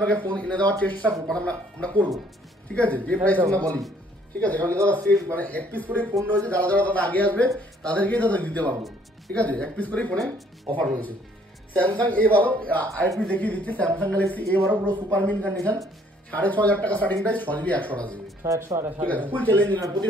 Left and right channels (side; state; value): both; normal; correlation 0.62